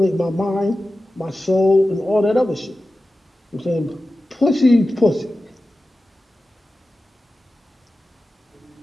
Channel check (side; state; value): both; normal; correlation 0.94